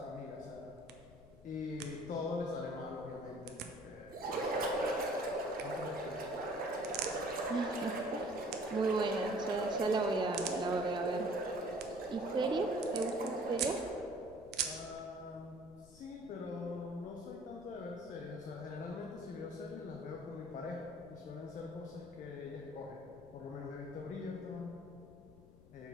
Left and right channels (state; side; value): noise; left; rumble, 21 dB below the sound